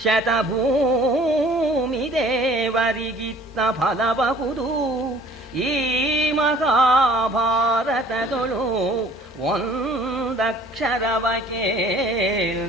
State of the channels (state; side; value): normal; both; correlation 0.52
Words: ಶತಭೂಮಿ ದೇವರಿಗಿತ್ತ ಫಲಬಹುದು. ಈ ಮಹಾಭಾರತದೊಳು ಒಂದಕ್ಷರವ